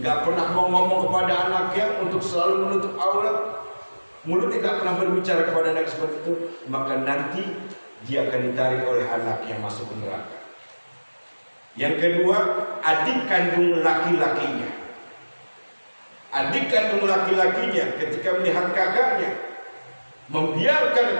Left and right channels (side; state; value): both; inverted; correlation -1.00